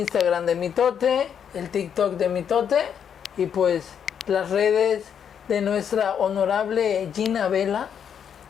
de Mitote, el TikTok de Mitote y pues las redes de nuestra honorable Gina Vela,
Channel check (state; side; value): quieter; right; 8.1 dB